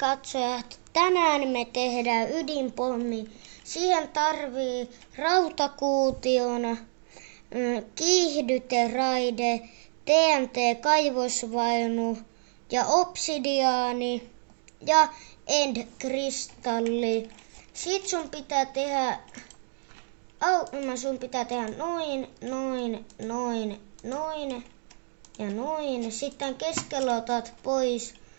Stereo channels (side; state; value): left; silent; digital silence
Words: Tänään me tehdään ydinpommi. Siihen tarvii rautakuution, kiihdyteraide, TNT-kaivosvaunu ja obsidiaani ja end-kristalli. Sit sun pitää tehdä noin ja noin. Sitten keskellä otat pois,